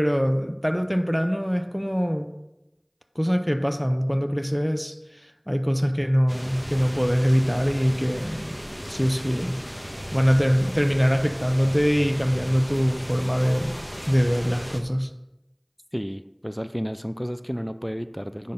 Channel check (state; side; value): identical; both; correlation 1.00